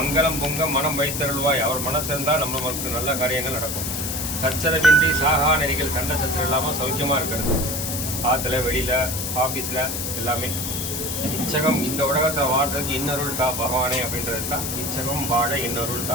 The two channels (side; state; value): left; noise; hiss, 3 dB below the sound